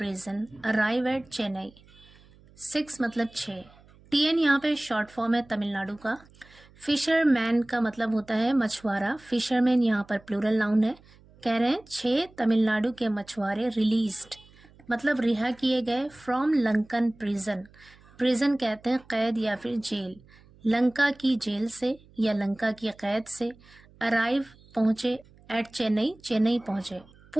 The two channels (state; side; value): noise; right; hum, 26 dB below the sound